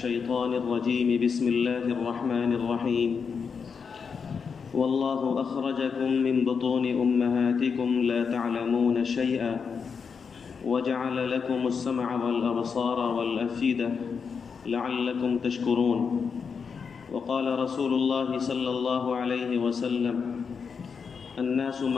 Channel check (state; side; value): quieter; right; 5.9 dB